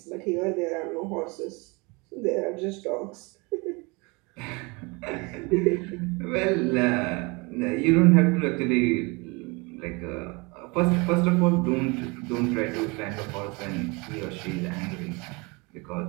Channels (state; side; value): quieter; left; 27.5 dB